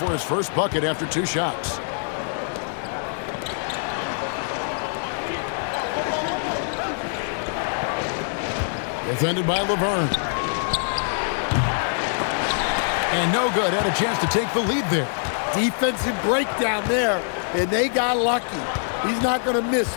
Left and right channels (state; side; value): silent; right; digital silence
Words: his first bucket after 2 shots. Defended by Laverne. And no good. Had a chance to take the lead there. Defensive breakdown there, and they got lucky. He's not going to miss